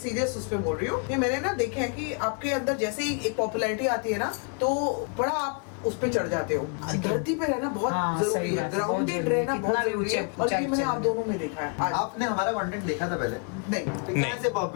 उस पे बोल रही हूँ कि मैंने ना देखे है कि आपके अंदर जैसे ही एक पॉपुलैरिटी आती है ना, तो बड़ा आप उस पे चढ़ जाते हो। धरती पे रहना बहुत जरूरी सही है, बात है, ग्राउंडेड बहुत रहना जरूरी, बहुत कितना भी जरूरी है। ऊंचे और ये मैंने ऊंचाई आप दोनों में देखा है। आज आपने हमारा कंटेंट देखा था पहले? नहीं, कैसे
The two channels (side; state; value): right; quieter; 39.5 dB